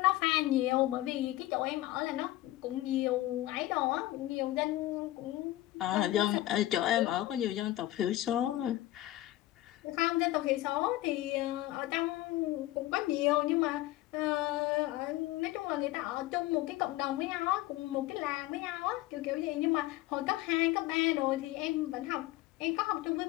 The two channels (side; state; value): right; quieter; 16.1 dB